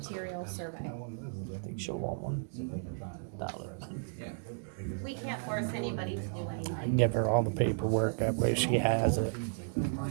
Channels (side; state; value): left; silent; digital silence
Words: survey? I think she'll want $1. We can't force anybody to do anything. I can give her all the paperwork, that way she has it.